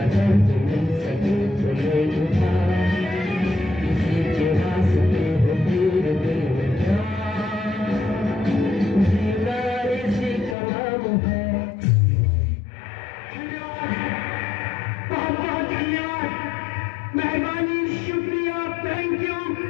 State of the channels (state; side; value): drops out; right; at 10.6 s